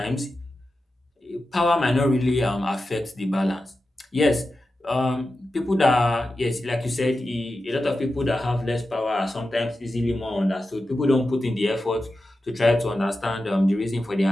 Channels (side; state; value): both; normal; correlation 0.92